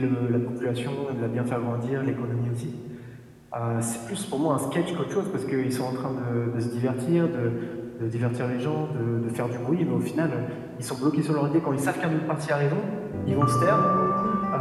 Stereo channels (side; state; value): both; identical; correlation 1.00